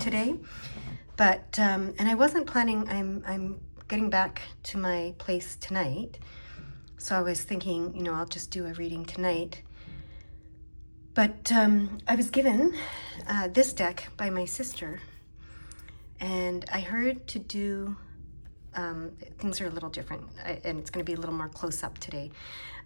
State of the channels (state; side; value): inverted; both; correlation -1.00